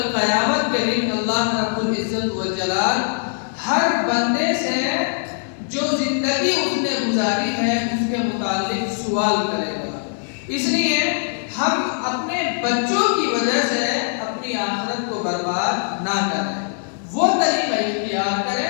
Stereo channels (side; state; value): right; silent; 65 dB below the other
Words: قیامت کے دن اللہ رب العزت والجلال ہر بندے سے جو زندگی اس نے گزاری ہے اس کے متعلق سوال کرے گا. اس لیے ہم اپنے بچوں کی وجہ سے اپنی آخرت کو برباد نہ کریں، وہ طریقہ اختیار